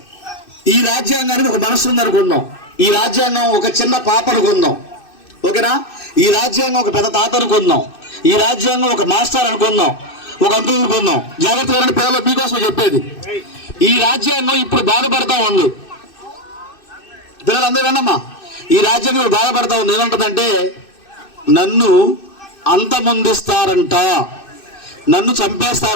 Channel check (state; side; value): late; right; 2.6 ms